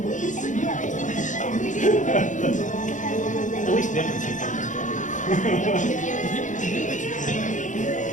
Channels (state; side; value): late; right; 0.36 ms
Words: At least different Chief.